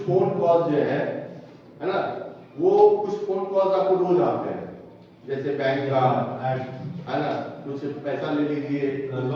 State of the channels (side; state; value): both; identical; correlation 1.00